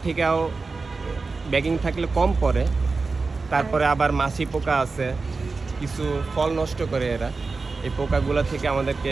থেকেও ব্যাগিং থাকলে কম পড়ে, তারপরে আবার মাছি পোকা আছে, কিছু ফল নষ্ট করে এরা। এই পোকাগুলো থেকে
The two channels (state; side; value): quieter; left; 4.1 dB